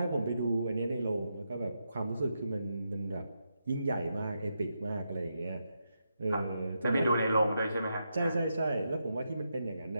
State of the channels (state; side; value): inverted; both; correlation -0.84